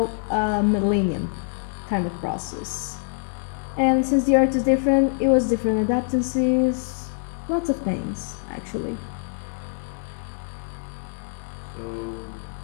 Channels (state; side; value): silent; right; digital silence